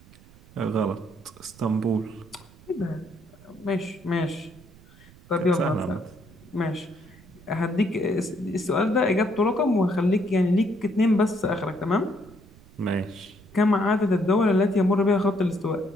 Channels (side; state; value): right; noise; rumble, 24 dB below the sound